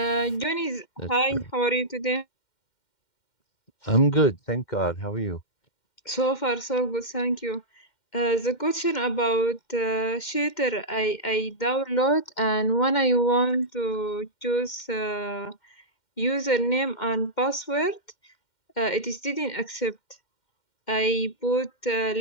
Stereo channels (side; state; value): right; late; 2.1 ms